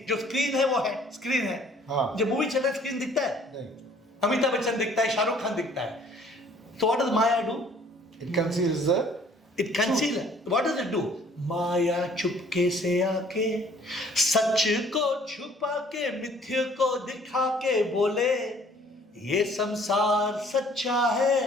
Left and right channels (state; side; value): normal; both; correlation 0.57